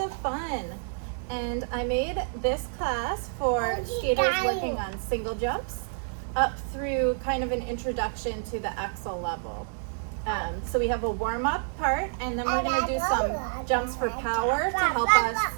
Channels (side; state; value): left; silent; 58 dB below the other